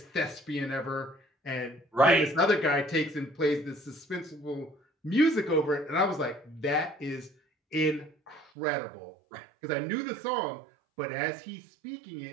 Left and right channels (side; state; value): left; drops out; at 8.5 s